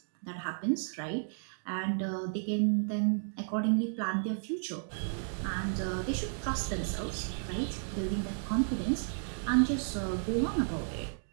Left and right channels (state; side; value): silent; left; digital silence